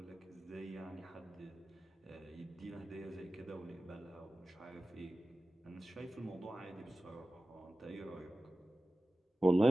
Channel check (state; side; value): normal; both; correlation 0.96